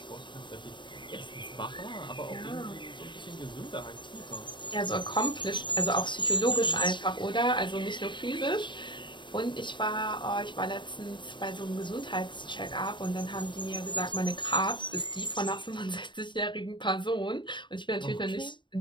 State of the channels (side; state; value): right; late; 0.23 ms